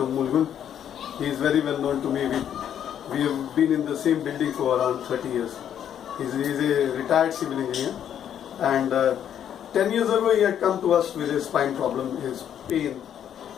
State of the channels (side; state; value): right; quieter; 9.6 dB